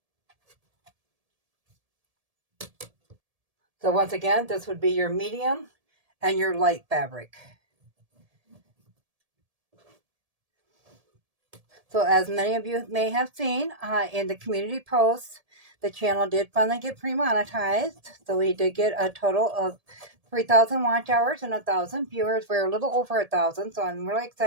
So once again, this would be your medium and your light fabric. So as many of you may have seen in the community posts, the channel did finally get pre-monetized. So we did get a total of 3,000 watch hours and 1,000 viewers. We're a little over 1,000, so I'm really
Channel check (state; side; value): late; left; 1.7 ms